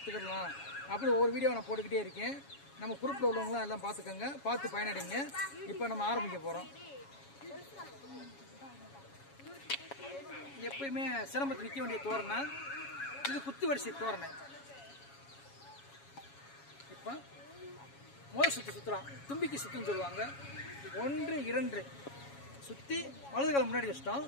அப்படி ஒவ்வொரு வீடியோ நான் போட்டுக்கிட்டே இருக்கேன். நம்ம குரூப்பில் உள்ளவங்களாம் எல்லாம் பார்த்துக்கோங்க, பார்த்து பயனடைங்க. இப்போ நம்ம ஆரம்பிக்க போகிறோம். எப்பயுமே சிலம்பத்தில் நிற்க வேண்டிய தோரணை இது குத்து வரிசை தோரணை. இப்போ முதல் சுற்றுலாம் தும்பிக்கை சுற்றுன்னு சொல்லுவாங்க. 1 2 சுற்றி வலது காலம் முன்னாடி வச்சிட்டோம்.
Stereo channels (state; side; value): late; right; 7.2 ms